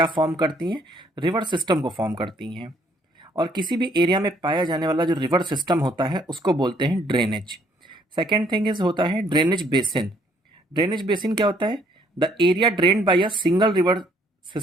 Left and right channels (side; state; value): both; normal; correlation 0.65